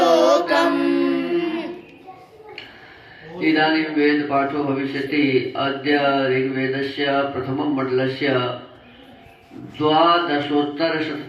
इदानीं वेद पाठो भविष्यति। अद्य ऋग्वेदस्य प्रथमं मण्डलस्य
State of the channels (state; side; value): identical; both; correlation 1.00